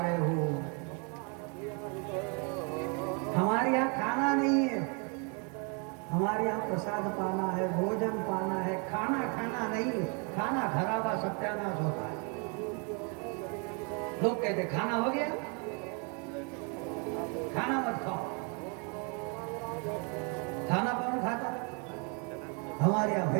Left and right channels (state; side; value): quieter; left; 35.6 dB